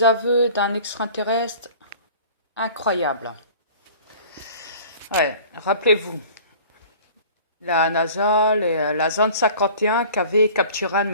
aveux d'un extraterrestre incroyable. Ouais, rappelez-vous, la NASA, la zone 51 qui avait capturé un de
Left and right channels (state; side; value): inverted; both; correlation -0.46